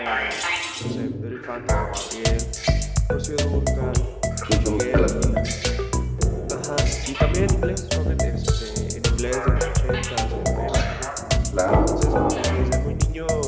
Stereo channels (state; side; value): identical; both; correlation 1.00